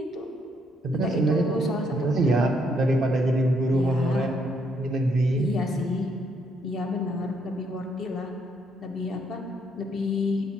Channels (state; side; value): normal; both; correlation 0.72